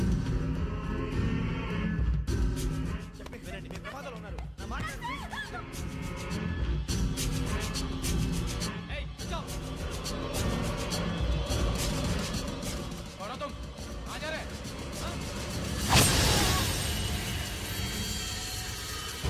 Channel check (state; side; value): identical; both; correlation 1.00